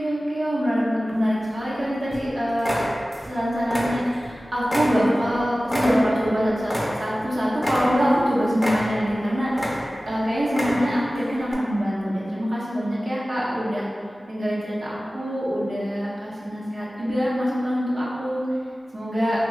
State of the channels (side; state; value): both; normal; correlation 0.96